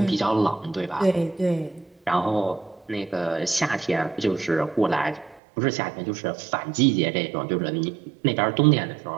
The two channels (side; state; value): left; drops out; at 5.4 s